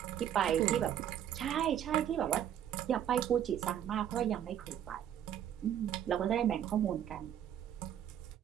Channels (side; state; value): left; quieter; 10.2 dB